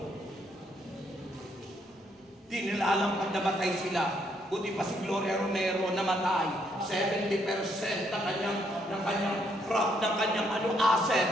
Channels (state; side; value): normal; both; correlation 0.72